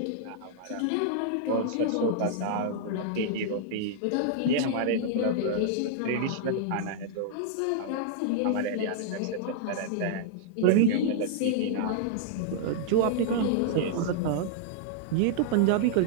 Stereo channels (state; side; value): different; both; correlation -0.01